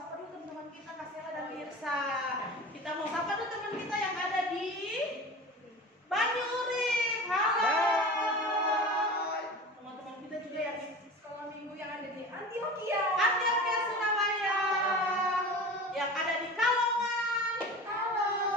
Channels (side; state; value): both; normal; correlation 0.34